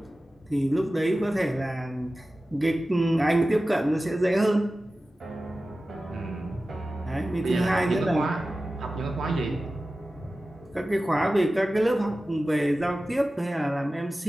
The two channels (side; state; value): both; normal; correlation 0.95